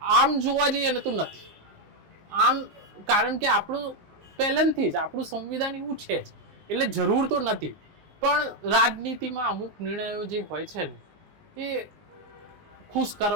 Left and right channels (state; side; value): late; left; 19 ms